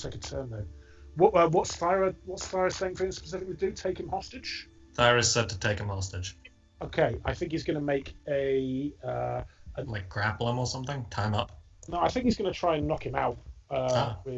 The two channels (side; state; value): both; identical; correlation 1.00